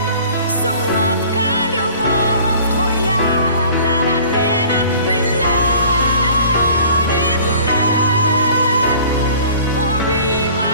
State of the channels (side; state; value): both; inverted; correlation -0.48